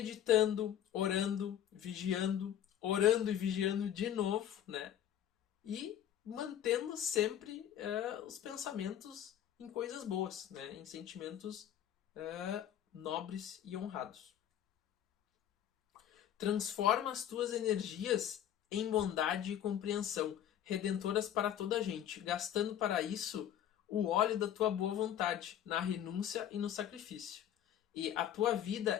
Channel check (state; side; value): quieter; right; 10.5 dB